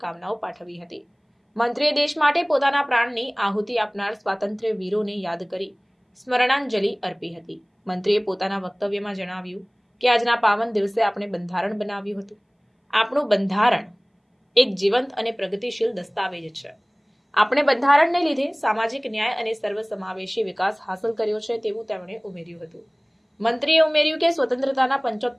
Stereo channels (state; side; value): identical; both; correlation 1.00